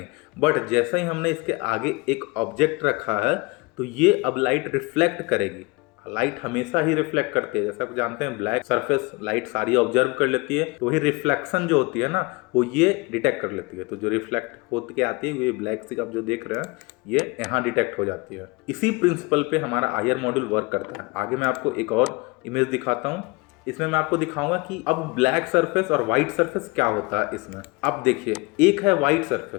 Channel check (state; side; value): quieter; right; 25.7 dB